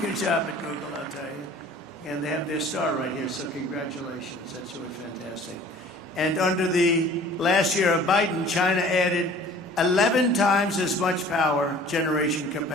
job at Google, I'll tell you. And they have their star right here, so congratulations. That's really fantastic. And under the last year of Biden, China added 11 times as much power generation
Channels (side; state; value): both; normal; correlation 0.48